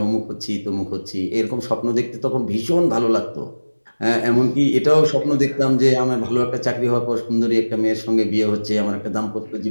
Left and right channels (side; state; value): both; inverted; correlation -1.00